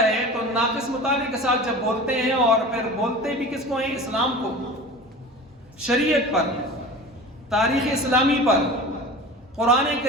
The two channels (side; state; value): both; normal; correlation 0.36